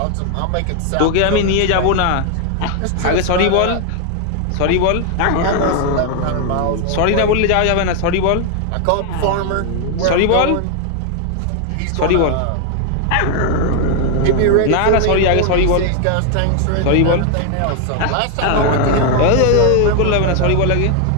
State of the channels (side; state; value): both; different; correlation 0.00